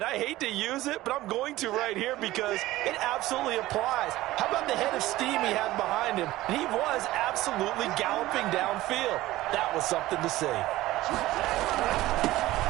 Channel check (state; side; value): quieter; left; 16.9 dB